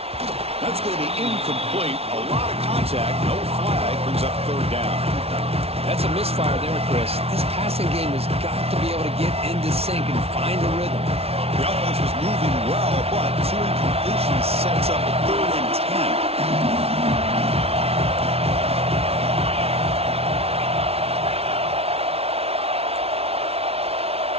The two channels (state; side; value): late; left; 0.30 ms